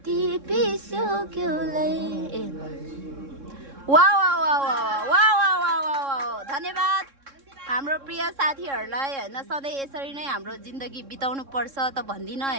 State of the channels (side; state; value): left; late; 3.7 ms